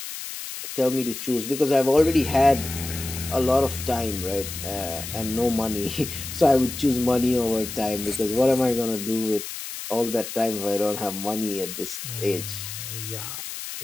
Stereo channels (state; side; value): noise; left; hiss, 8 dB below the sound